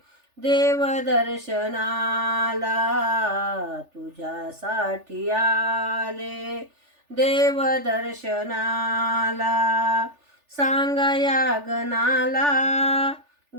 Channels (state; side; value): late; left; 3.4 ms